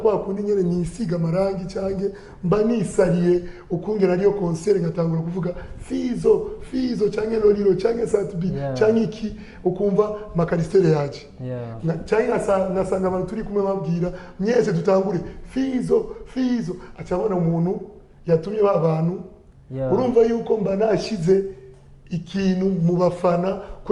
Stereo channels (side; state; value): both; identical; correlation 1.00